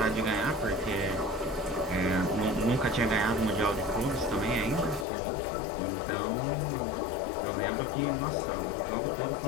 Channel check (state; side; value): drops out; right; at 5.1 s